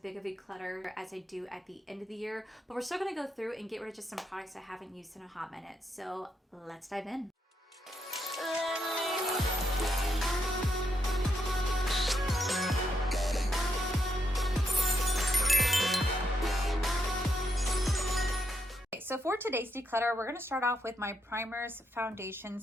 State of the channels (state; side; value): normal; both; correlation 0.80